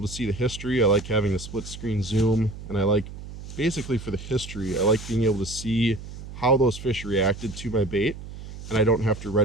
to see the history. I like having the split screen zoom, and I like, basically for the history, I like being able to see how those fish reacted to my bait, and I don't have to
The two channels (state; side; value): noise; right; hum, 12 dB below the sound